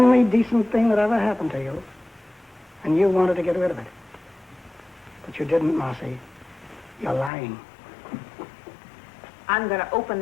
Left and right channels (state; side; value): drops out; right; at 7.3 s